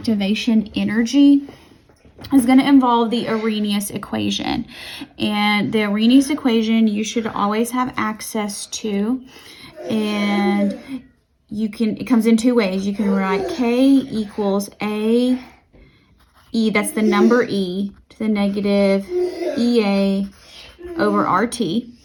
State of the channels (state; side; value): identical; both; correlation 1.00